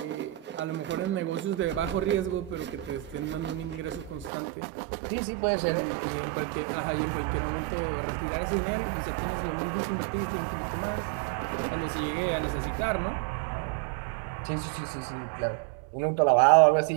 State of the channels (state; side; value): drops out; left; at 4.3 s